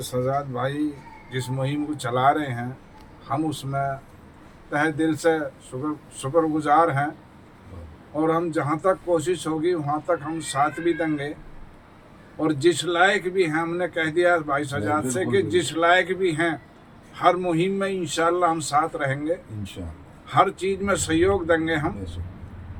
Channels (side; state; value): both; identical; correlation 1.00